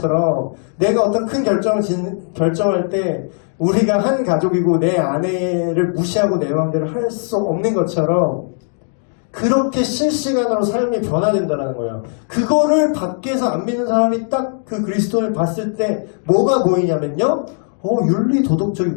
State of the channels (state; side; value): silent; right; 57 dB below the other